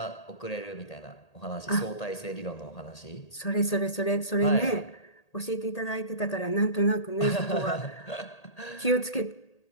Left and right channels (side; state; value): right; late; 1.8 ms